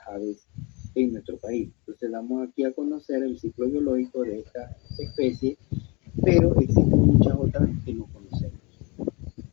aves en nuestro país. Entonces damos aquí a conocer el ciclo biológico de esta especie, pero existen muchas otras que no conocemos.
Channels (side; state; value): right; quieter; 28.7 dB